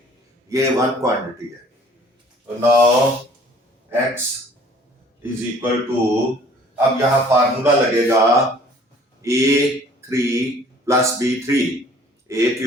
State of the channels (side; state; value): both; normal; correlation 0.54